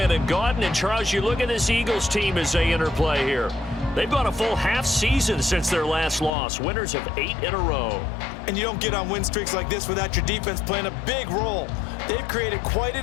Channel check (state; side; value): drops out; right; at 6.3 s